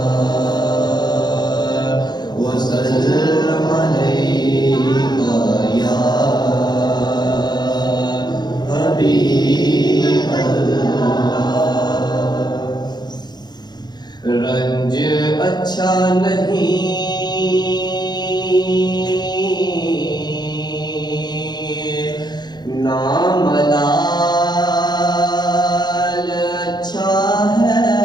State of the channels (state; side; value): late; right; 0.21 ms